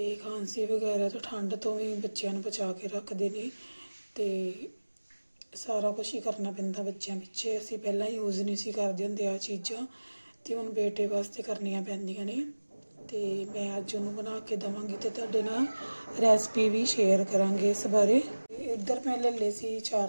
ਖਾਂਸੀ ਵਗੈਰਾ ਤੋਂ ਠੰਡ ਤੋਂ ਵੀ ਬੱਚਿਆਂ ਨੂੰ ਬਚਾ ਕੇ ਰੱਖਦੇ ਨੇ। ਤੇ ਸਾਰਾ ਕੁਝ ਹੀ ਕਰਨਾ ਪੈਂਦਾ ਬੱਚਿਆਂ ਪਿੱਛੇ। ਅਸੀਂ ਪਹਿਲਾਂ ਯੂਜ਼ ਨਹੀਂ ਸੀ ਕਰਦੇ ਹੁੰਦੇ ਆ ਚੀਜ਼ਾਂ, ਤੇ ਹੁਣ ਬੇਟੇ ਵਾਸਤੇ ਕਰਨੀਆਂ ਪੈਂਦੀਆਂ ਨੇ। ਤੇ ਮੈਂ ਅੱਜ ਉਹਨੂੰ ਬਣਾ ਕੇ ਦੇਵਾਂਗੀ ਤੇ ਤੁਹਾਡੇ ਨਾਲ ਰੈਸਪੀ ਵੀ ਸ਼ੇਅਰ ਕਰਾਂਗੇ ਇਸ ਬਾਰੇ। ਇੱਧਰ ਮੈਂ ਲੈ ਲਏ ਸੀ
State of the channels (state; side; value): inverted; both; correlation -1.00